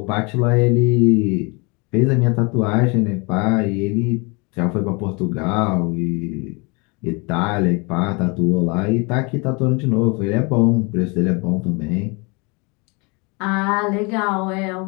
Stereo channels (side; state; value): right; quieter; 29.9 dB